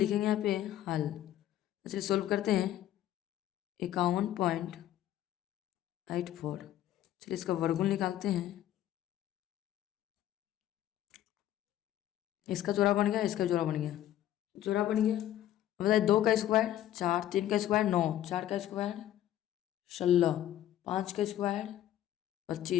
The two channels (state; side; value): quieter; right; 12.5 dB